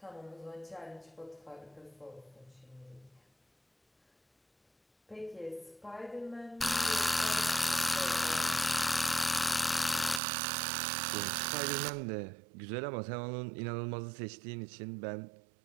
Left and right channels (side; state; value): left; drops out; at 10.2 s